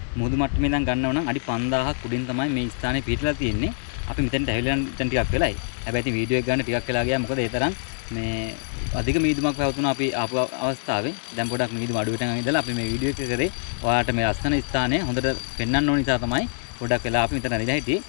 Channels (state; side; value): silent; right; digital silence